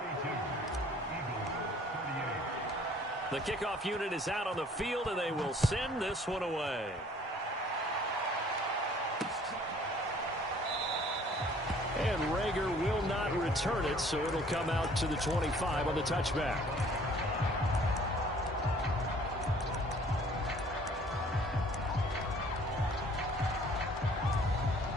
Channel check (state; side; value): normal; both; correlation 0.55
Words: The kickoff unit is out on the field, and they will send this one away. And Rager will not return it, so it'll come out to the 25 on the touchback.